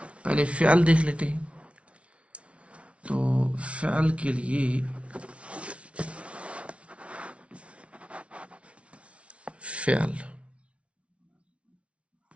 پہلے فعل دیکھ لیتے ہیں. تو فعل کے لیے فعل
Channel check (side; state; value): left; late; 0.061 ms